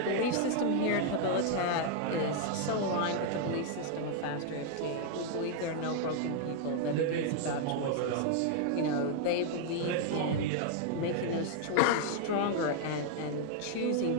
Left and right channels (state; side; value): different; both; correlation 0.00